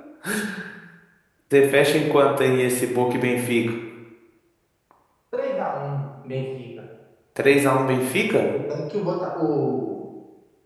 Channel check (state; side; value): identical; both; correlation 1.00